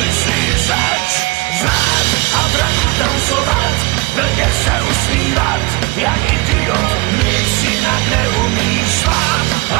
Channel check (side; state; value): left; quieter; 24.1 dB